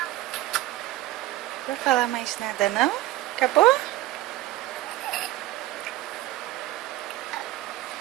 Não vou falar mais nada, não? Acabou?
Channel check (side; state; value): left; quieter; 16.0 dB